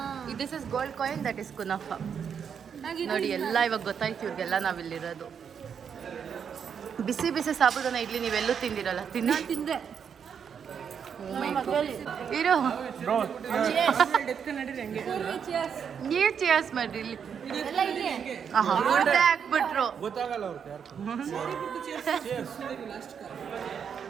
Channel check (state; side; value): quieter; left; 7.3 dB